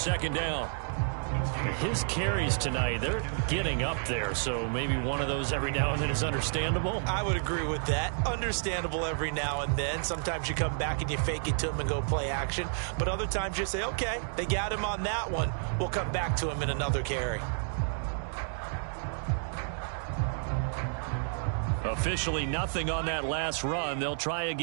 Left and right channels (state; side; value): silent; left; digital silence